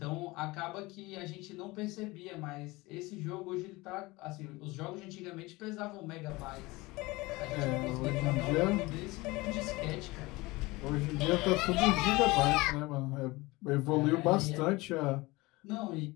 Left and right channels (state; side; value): quieter; right; 22.0 dB